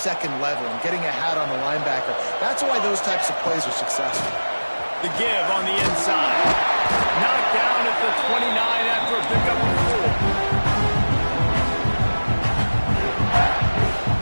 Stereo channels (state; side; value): inverted; both; correlation -1.00